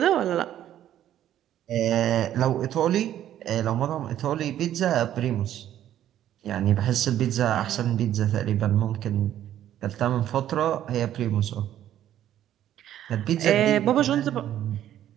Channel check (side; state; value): left; quieter; 11.6 dB